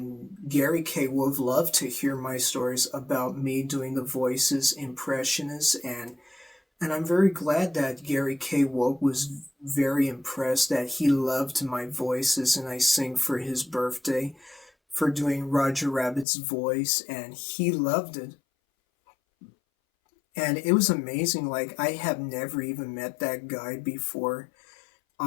Gary K. Wolf loved to hear my stories about me doing the voices, impressionists, and I'm very glad that Gary K. Wolf was very impressed, that he loved my voices, and I sing for his birthday for doing Roger Rabbit's voice, and he loved it. And it was amazing. Like, I have never even met that guy before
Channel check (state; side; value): drops out; right; at 16.2 s